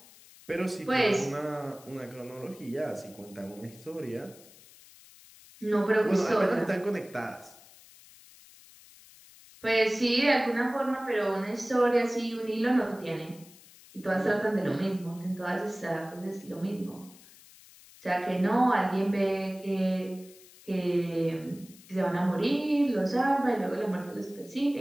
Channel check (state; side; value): noise; left; hiss, 23 dB below the sound